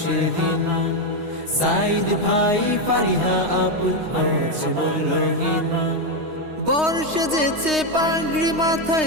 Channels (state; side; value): late; left; 3.2 ms